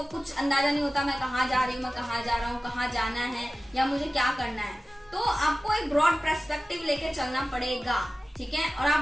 कुछ अंदाजा नहीं होता, मैं कहाँ जा रही हूँ, मैं कहाँ जा रहा हूँ, कहाँ जाना है, या मुझे क्या करना है। तो आपको एक ब्रॉड पर्सपेक्टिव लेके चलना पड़ेगा, ठीक है। और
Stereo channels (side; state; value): both; normal; correlation 0.96